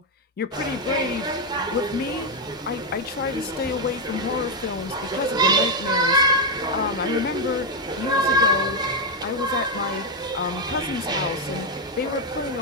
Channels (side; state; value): both; normal; correlation 0.02